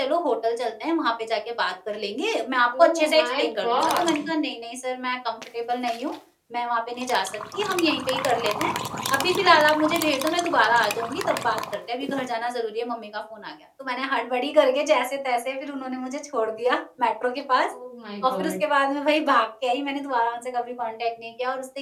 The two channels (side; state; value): both; identical; correlation 1.00